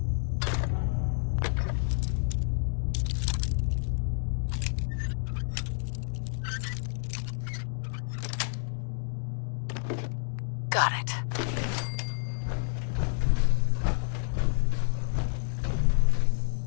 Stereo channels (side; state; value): right; silent; digital silence